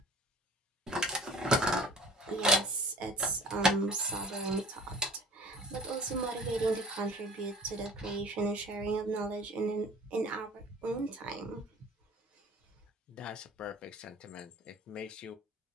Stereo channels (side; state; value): both; normal; correlation 0.46